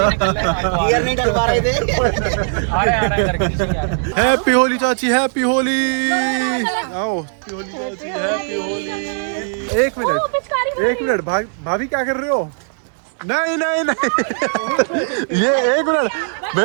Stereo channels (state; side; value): silent; left; 67 dB below the other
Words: गियर नहीं डल पा रहे थे। आ रहे करके। हैप्पी होली चाची, हैप्पी होली। आओ हैप्पी होली चाची, हैप्पी होली। एक मिनट भाभी क्या कर रहे हो? नहीं नहीं नहीं ये एक मिनट,